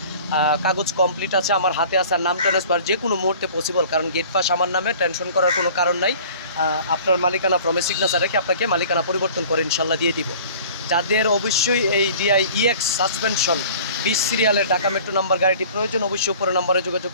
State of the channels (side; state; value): both; inverted; correlation -0.46